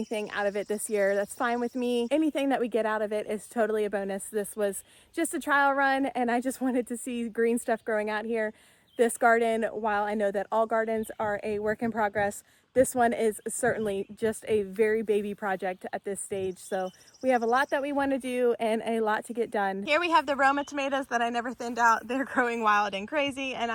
out of it this year, that's fine with me. Anything that we get out of it is totally a bonus. This was just a trial run and I just wanted to see green stuff growing out here. This garden, while I know that all gardens are a work in progress, this one is certainly just a very baby project at this stage. So we have a lot that we want to do and a lot to get done. Here we have the Roma tomatoes that I never thinned out. They're growing wild and crazy and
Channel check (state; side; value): identical; both; correlation 1.00